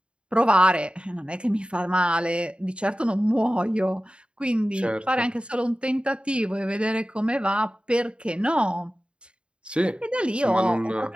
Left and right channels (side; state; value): left; late; 0.055 ms